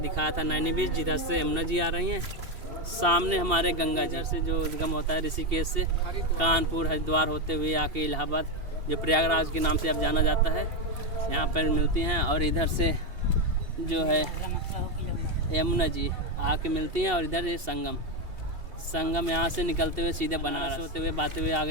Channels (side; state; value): left; late; 2.7 ms